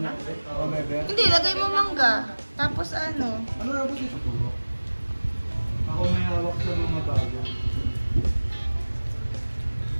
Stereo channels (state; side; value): inverted; both; correlation -1.00